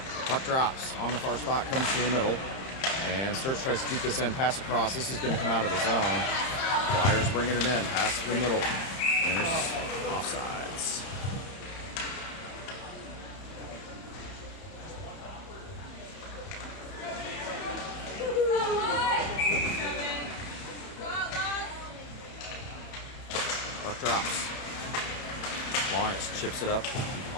Puck drops on the far spot, comes to the middle, and Sturts tries to keep this in, pass across. This is going to come out of the zone. Flyers bringing it in, pass to the middle, and there's offsides. Puck drops. Lawrence chips it up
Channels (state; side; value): late; right; 31 ms